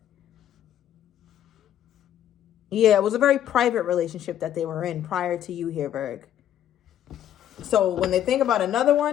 Yeah, it was a very private relationship that they were in prior to you here, Virg. So when they think about another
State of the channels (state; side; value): quieter; right; 10.9 dB